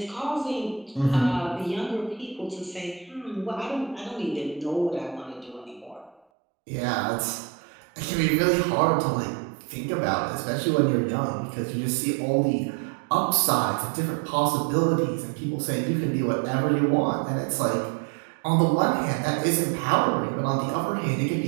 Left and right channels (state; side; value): drops out; left; at 6.2 s